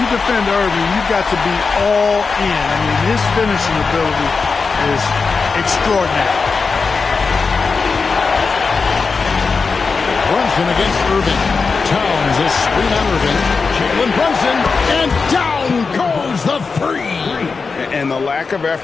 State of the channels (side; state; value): right; quieter; 4.7 dB